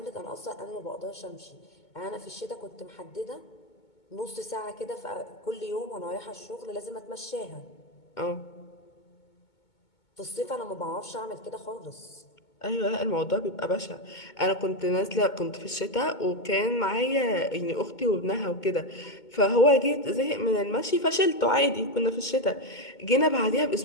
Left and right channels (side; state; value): right; late; 2.2 ms